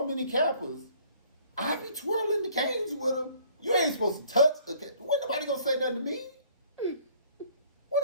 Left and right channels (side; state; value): both; inverted; correlation -0.57